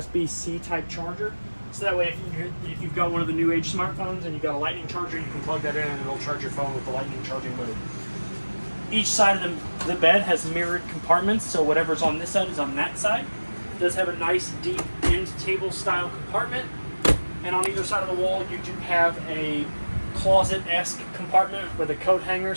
type charger. So that way, if you've got one of the new age smartphones and you've got a lightning charger, you can plug that in and it'll charge your phone with the lightning charging mode. Each side of the bed has mirrored compartments, so whatever's on this side is on that side. It does have a nice deep end table style compartment, and on either side of the wall you do have a closet-esque compartment with a coat hanger,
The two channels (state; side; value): inverted; both; correlation -1.00